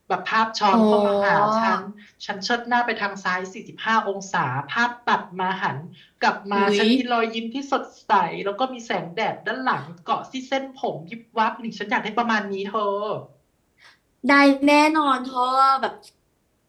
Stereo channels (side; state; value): both; identical; correlation 1.00